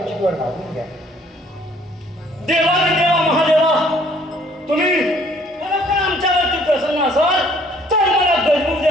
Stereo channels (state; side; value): normal; both; correlation 0.60